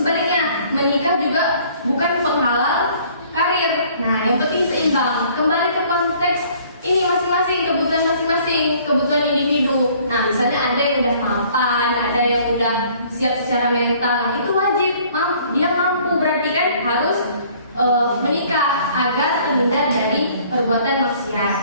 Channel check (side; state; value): both; inverted; correlation -0.57